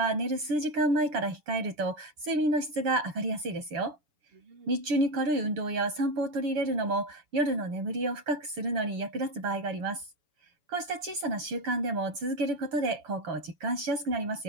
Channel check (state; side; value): late; left; 7.0 ms